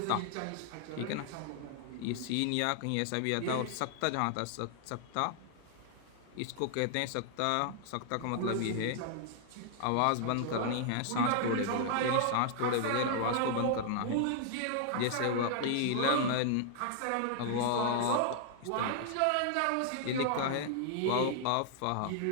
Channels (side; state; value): both; different; correlation 0.00